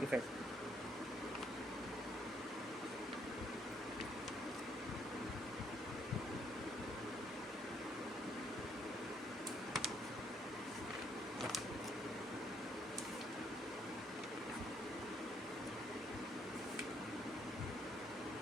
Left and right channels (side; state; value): both; normal; correlation 0.69